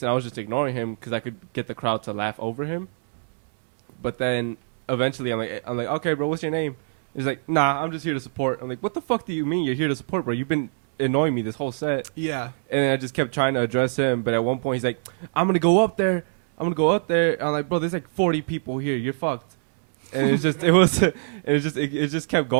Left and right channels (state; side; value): silent; left; digital silence